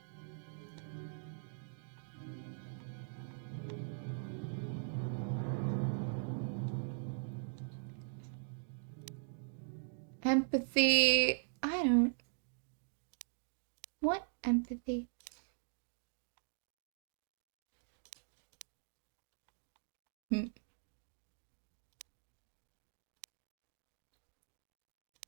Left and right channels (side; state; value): left; silent; digital silence